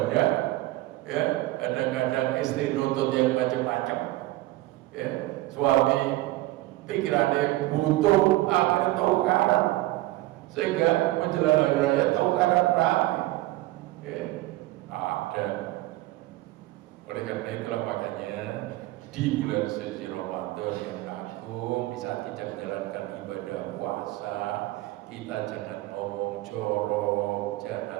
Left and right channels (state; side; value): quieter; left; 17.8 dB